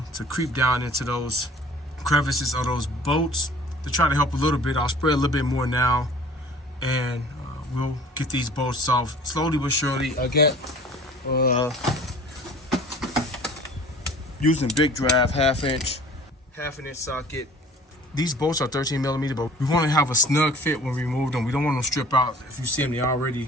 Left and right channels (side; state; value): both; normal; correlation 0.48